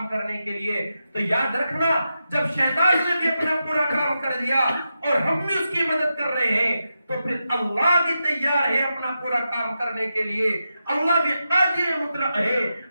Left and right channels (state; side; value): inverted; both; correlation -0.88